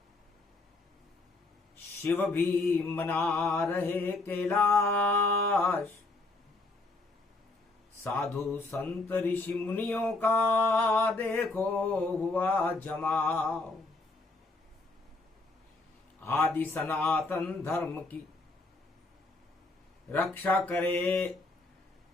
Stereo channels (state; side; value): quieter; right; 3.2 dB